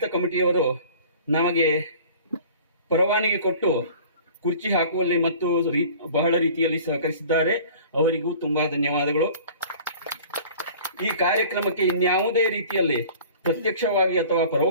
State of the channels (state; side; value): inverted; both; correlation -0.46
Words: ಕಮಿಟಿಯವರು ನಮಗೆ ಪರವಾನಗಿ ಕೊಟ್ಟು ಕುರ್ಚಿ ಹಾಕುವಲ್ಲಿ ಮತ್ತು ಬಹಳ ರೀತಿಯಲ್ಲಿ ಸಹಕರಿಸಿದ್ದಾರೆ, ಅವರಿಗೂ ತುಂಬಾ ಧನ್ಯವಾದಗಳು. ಈ ಕಾರ್ಯಕ್ರಮಕ್ಕೆ ಇನ್ಯಾವುದೇ ರೀತಿಯಲ್ಲಿ ಪ್ರತ್ಯಕ್ಷವಾಗಿ ಅಥವಾ